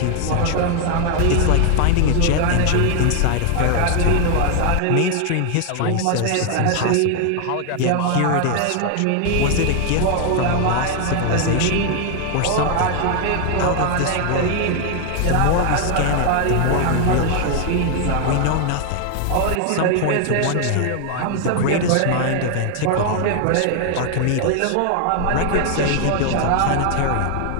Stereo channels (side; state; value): both; different; correlation 0.00